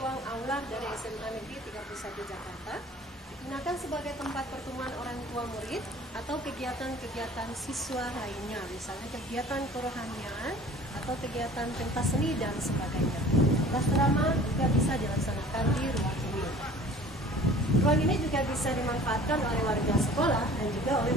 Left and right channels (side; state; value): both; normal; correlation 0.47